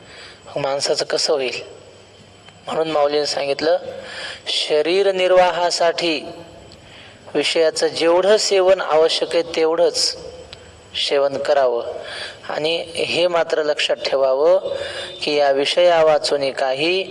माणसाचं कसं होईल? म्हणून माऊलीने सांगितलं शरीर निर्वाहासाठी विषयाचं जेवढं सेवन आवश्यक आहे तेवढंच सेवन करावं. आणि हे मात्र लक्षात ठेवावं की या विषया वाचून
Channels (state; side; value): identical; both; correlation 1.00